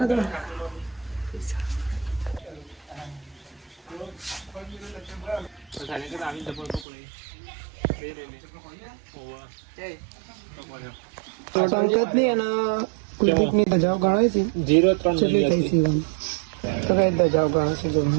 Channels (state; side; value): drops out; left; at 6.9 s